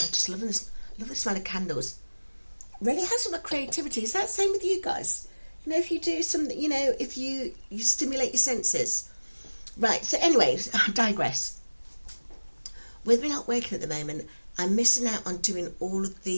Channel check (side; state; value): both; inverted; correlation -1.00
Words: just loving this. Love the smell of candles. Really has some creativity. Is that the same with you guys? If you do something, if you stimulate your senses. Right, so anyways, I digress. With me not working at the moment, I'm missing out on doing all of